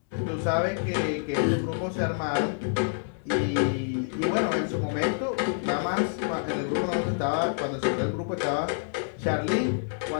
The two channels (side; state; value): right; silent; digital silence